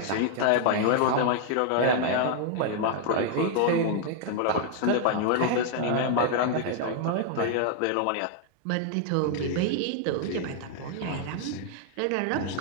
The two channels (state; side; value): different; both; correlation 0.00